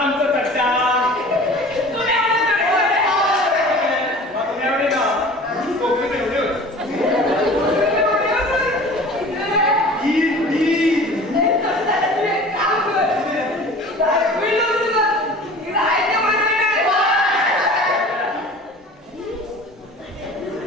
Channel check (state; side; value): normal; both; correlation 0.42